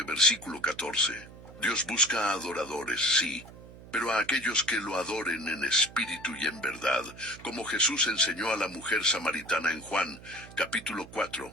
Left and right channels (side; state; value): right; noise; hum, 18 dB below the sound